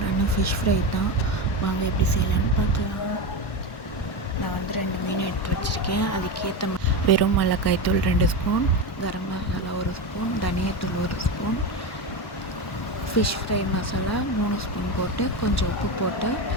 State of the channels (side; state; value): right; late; 1.1 ms